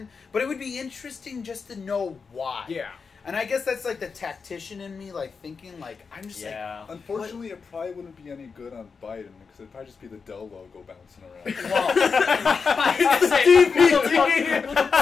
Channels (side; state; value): right; quieter; 5.3 dB